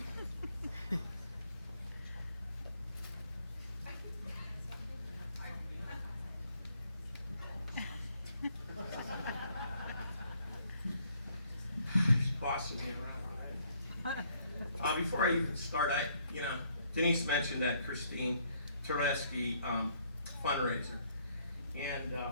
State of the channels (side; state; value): both; inverted; correlation -0.67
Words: Bossing me around. Before I even start, Denise mentioned that Christine Tereski fundraiser, and